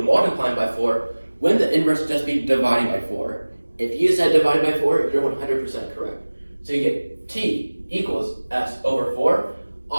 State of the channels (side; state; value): both; inverted; correlation -1.00